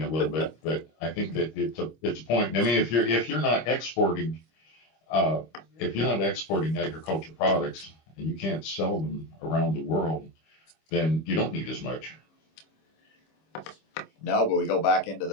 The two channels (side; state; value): right; late; 25 ms